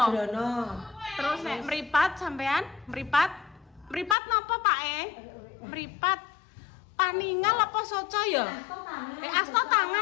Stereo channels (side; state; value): right; drops out; at 4.2 s